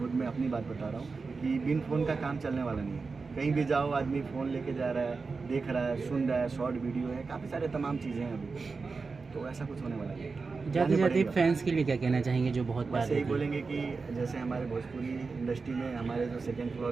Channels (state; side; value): quieter; left; 4.4 dB